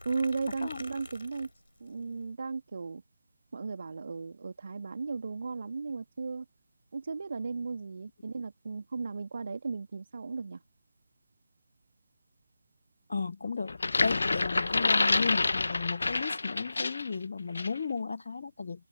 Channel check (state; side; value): inverted; both; correlation -0.92